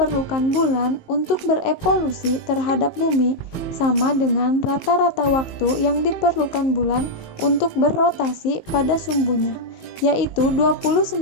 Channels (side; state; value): right; late; 18 ms